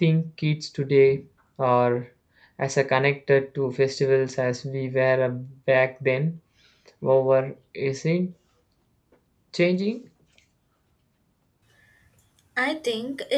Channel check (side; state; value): both; identical; correlation 1.00